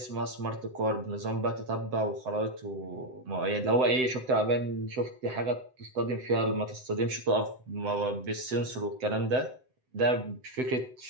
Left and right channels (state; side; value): late; left; 7.8 ms